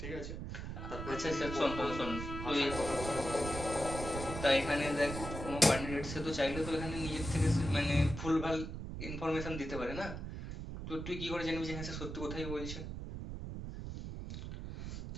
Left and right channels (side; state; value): right; noise; rumble, 7 dB below the sound